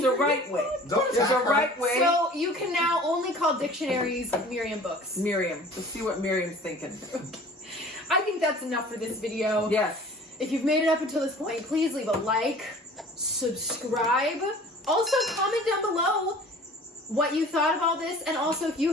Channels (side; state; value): both; normal; correlation 0.46